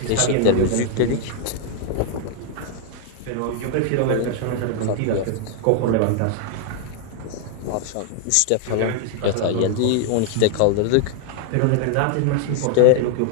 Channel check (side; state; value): both; different; correlation 0.00